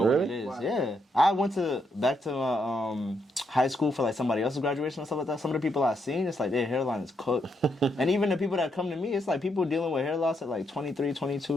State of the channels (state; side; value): normal; both; correlation 0.78